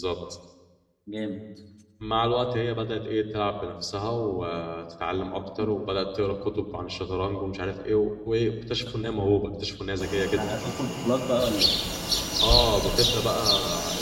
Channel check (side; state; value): both; identical; correlation 1.00